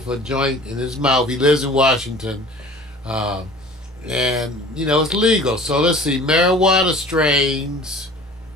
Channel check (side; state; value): both; normal; correlation 0.44